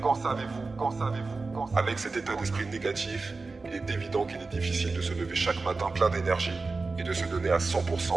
Qu'en savez-vous? Qu'en savez-vous? Avec cet état d'esprit négatif, il est évident qu'il est difficile de se lever chaque matin plein d'énergie et de se donner à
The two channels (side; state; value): left; quieter; 3.9 dB